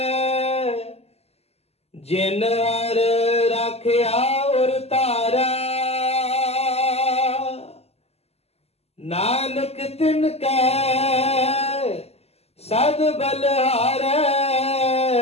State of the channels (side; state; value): right; late; 0.30 ms